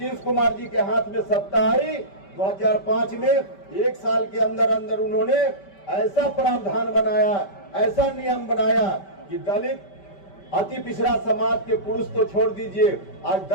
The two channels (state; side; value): late; right; 5.1 ms